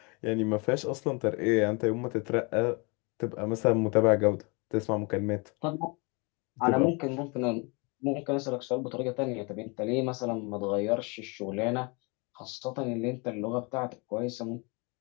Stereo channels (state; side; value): quieter; right; 30.4 dB